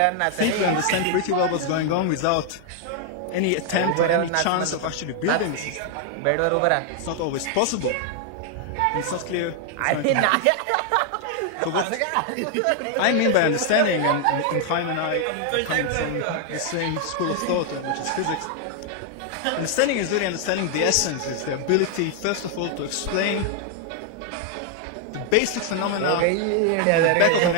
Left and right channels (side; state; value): both; different; correlation 0.00